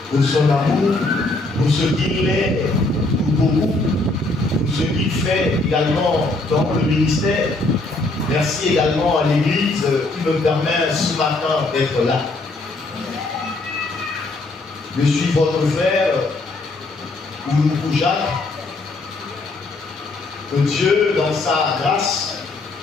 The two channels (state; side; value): quieter; right; 3.0 dB